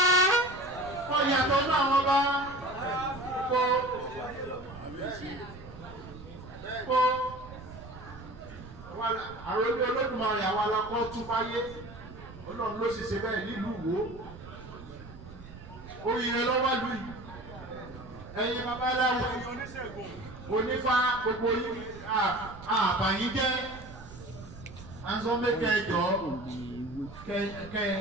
Wọ́n yàtọ̀ nínú àwọn ọba kó àròlé Olódùmarè àwọn alákọ̀ tún fáyé Ọlọ́run ló sì ṣe bẹ́ẹ̀ nílùú Ìwó oríire lọ́wọ́ lù yìí ẹ̀yin babaláwo onífá gbogbo yìí àbàyín jẹ́ anso mẹ́kẹ́ jọ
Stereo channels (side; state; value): right; noise; rumble, 16 dB below the sound